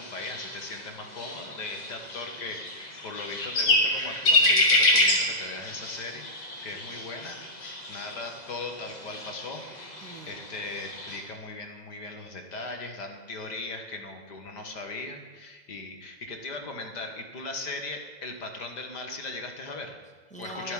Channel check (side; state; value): right; late; 2.0 ms